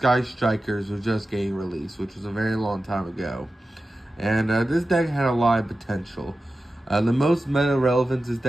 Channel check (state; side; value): normal; both; correlation 0.94